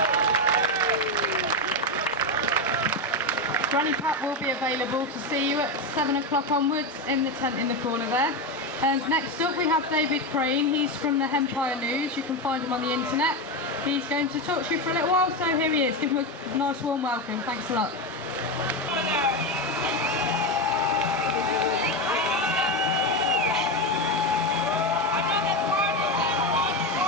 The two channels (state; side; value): normal; both; correlation 0.13